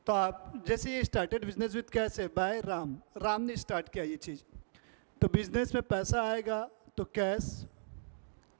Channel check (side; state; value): left; silent; digital silence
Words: तो आप जैसे ये स्टार्टेड बिजनेस विथ कैश है बाय राम ने स्टार्ट किया ये चीज़, तो बिजनेस में पैसा आएगा तो कैश।